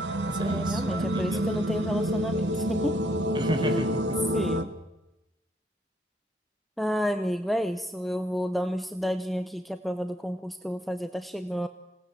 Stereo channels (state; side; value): normal; both; correlation 0.71